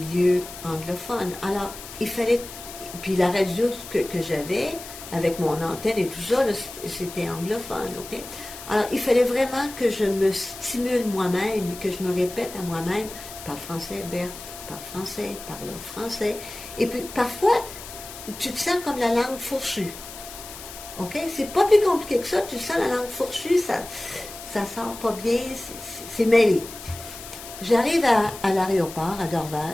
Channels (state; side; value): noise; left; hiss, 13 dB below the sound